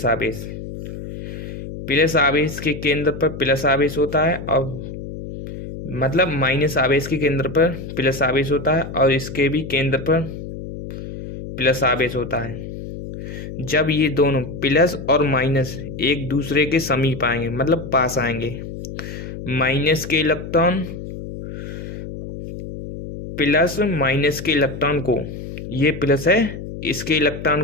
आवेश। प्लस आवेश के केंद्र पर प्लस आवेश होता है और मतलब माइनस आवेश के केंद्र पर प्लस आवेश होता है और इसके भी केंद्र पर प्लस आवेश होता है। जब ये दोनों प्लस और माइनस एक दूसरे के समीप आएंगे मतलब पास आएंगे, माइनस के इलेक्ट्रॉन प्लस माइनस के इलेक्ट्रॉन को, ये प्लस है, इसके इलेक्ट्रॉन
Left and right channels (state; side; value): noise; left; hum, 9 dB below the sound